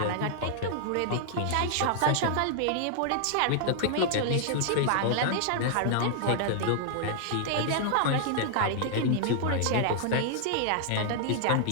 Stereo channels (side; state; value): both; different; correlation -0.01